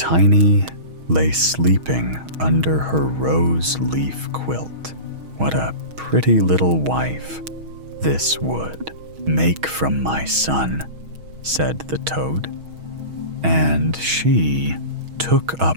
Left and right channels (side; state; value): left; late; 6.3 ms